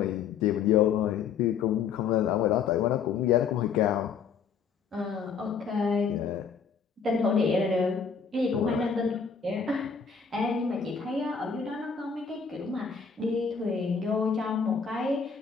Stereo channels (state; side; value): quieter; right; 6.3 dB